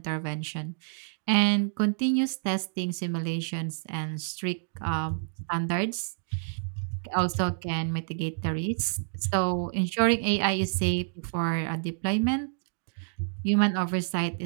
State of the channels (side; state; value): left; silent; digital silence